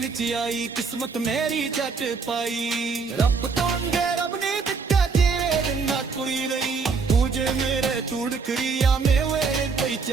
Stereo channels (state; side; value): quieter; left; 4.9 dB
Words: ਚ ਆਈ ਕਿਸਮਤ ਮੇਰੀ ਜੱਟ ਪਾਈ ਰੱਬ ਤੋਂ ਅੰਗੇ ਰੱਬ ਨੇ ਦਿੱਤਾ ਜਿਵੇਂ ਦਿੰਦਾ ਕੋਈ ਨਹੀਂ ਤੂੰ ਜੇ ਮੇਰੇ ਤੂੜ ਕਰੀਆ ਮੇਵੇ